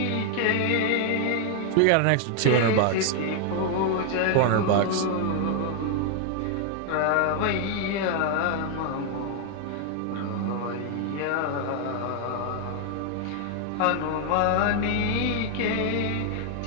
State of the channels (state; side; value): different; both; correlation 0.00